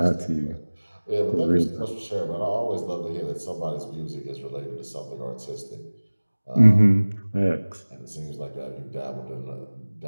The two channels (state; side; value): inverted; both; correlation -1.00